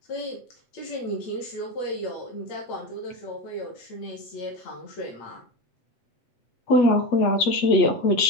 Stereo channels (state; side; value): late; right; 8.3 ms